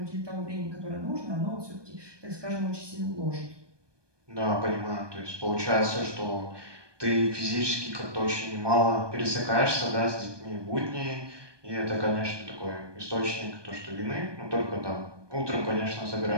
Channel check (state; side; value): late; left; 1.2 ms